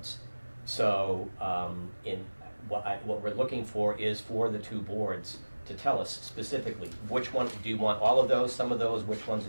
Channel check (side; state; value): both; inverted; correlation -1.00